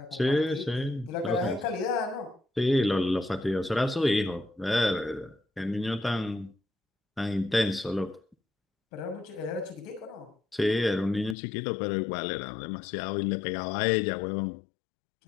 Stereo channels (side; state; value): right; drops out; at 11.4 s